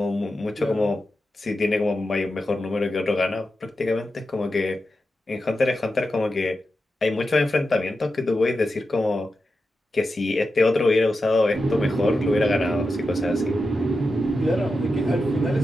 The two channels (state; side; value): normal; both; correlation 0.90